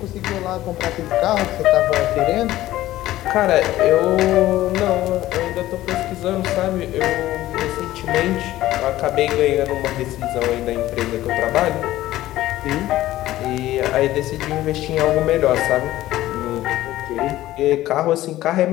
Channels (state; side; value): quieter; right; 15.1 dB